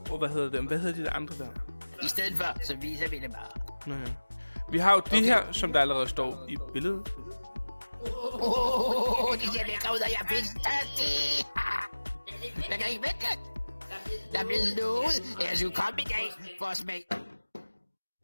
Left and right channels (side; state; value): both; inverted; correlation -1.00